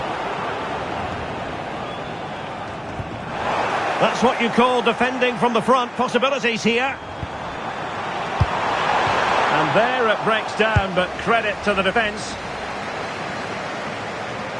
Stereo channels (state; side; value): identical; both; correlation 1.00